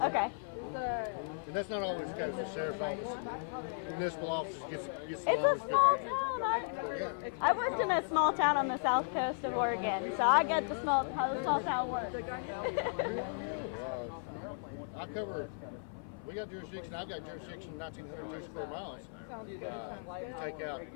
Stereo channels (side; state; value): right; silent; 54 dB below the other